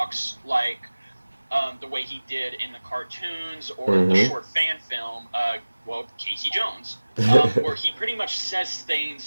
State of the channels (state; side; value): inverted; both; correlation -1.00